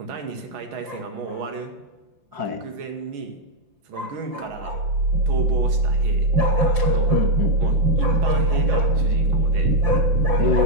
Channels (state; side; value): late; left; 6.3 ms